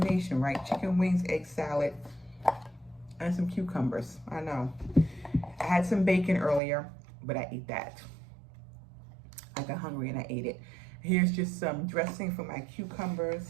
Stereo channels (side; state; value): left; drops out; at 6.6 s